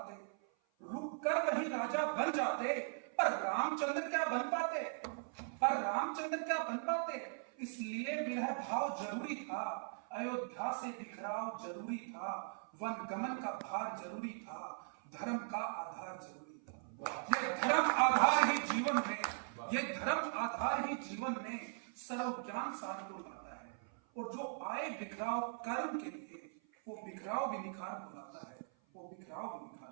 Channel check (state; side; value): silent; left; 51 dB below the other